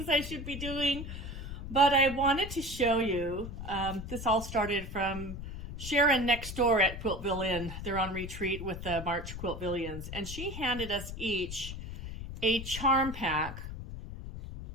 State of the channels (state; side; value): noise; left; rumble, 9 dB below the sound